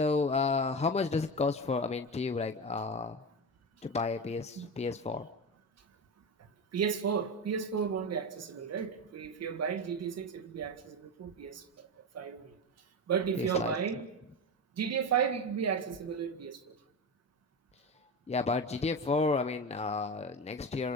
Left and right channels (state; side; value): normal; both; correlation 0.20